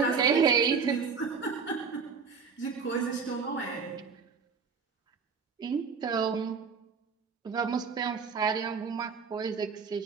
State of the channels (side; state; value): left; quieter; 5.6 dB